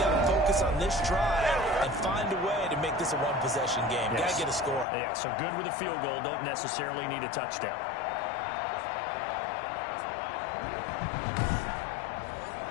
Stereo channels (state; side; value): drops out; right; at 4.9 s